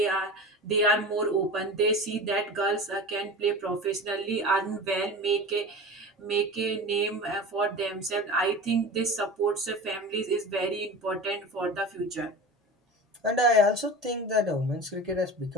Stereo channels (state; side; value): normal; both; correlation 0.32